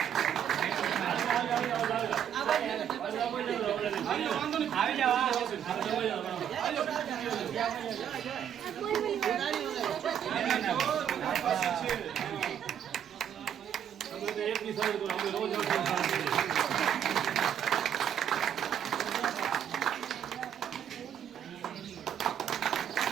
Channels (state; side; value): quieter; left; 9.2 dB